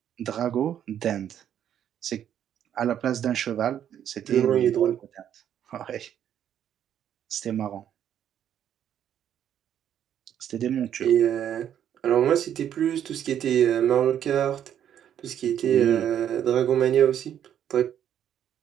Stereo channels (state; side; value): quieter; left; 9.9 dB